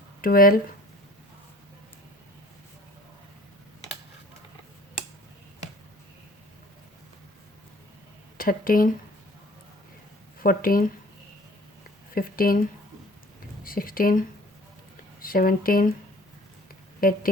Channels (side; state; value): both; normal; correlation 0.51